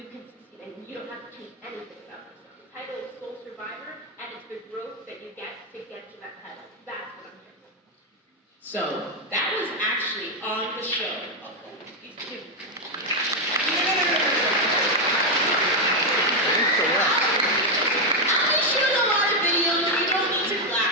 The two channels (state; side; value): normal; both; correlation 0.04